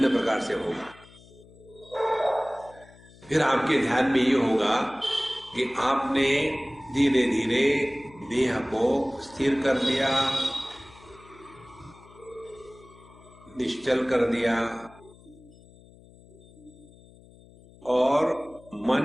प्रकार से होगा। फिर आपके ध्यान में ये होगा कि आपने धीरे धीरे देह को स्थिर कर दिया, निश्चल कर दिया और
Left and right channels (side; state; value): left; noise; hum, 24 dB below the sound